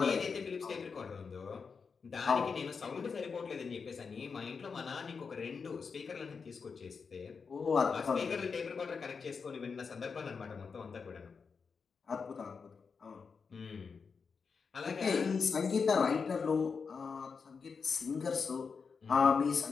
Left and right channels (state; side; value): quieter; right; 5.4 dB